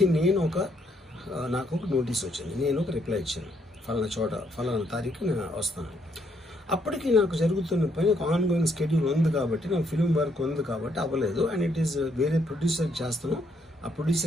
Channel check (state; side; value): normal; both; correlation 0.72